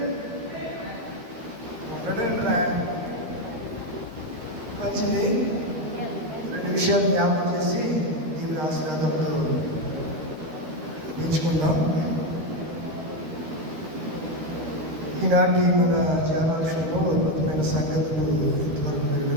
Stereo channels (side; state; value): left; late; 12 ms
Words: మంచిది. రెండు విషయాలు జ్ఞాపకం చేసి దీని ఆశీర్వాదాలతో ఎంచుకుందాం. ఈనాటి మన ధ్యానాంశంలో అద్భుతమైన సంగతులు ఇంతవరకు మీరు